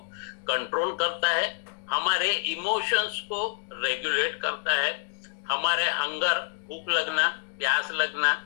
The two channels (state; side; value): silent; right; 60 dB below the other